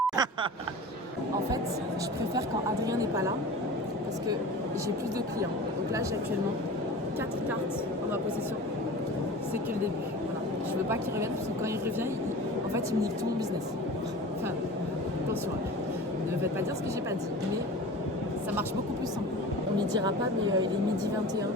En fait, je préfère quand Adrien n'est pas là parce que j'ai plus de clients. Donc là, j'ai actuellement 4 cartes en ma possession. C'est que le début. Voilà. Je veux pas qu'il revienne parce que quand il revient, en fait, il me nique tout mon business. Enfin, attention. Ne faites pas dire ce que j'ai pas dit, mais ça marche beaucoup plus simple. On lui dira pas, mais il est midi 21.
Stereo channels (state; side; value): normal; both; correlation 0.36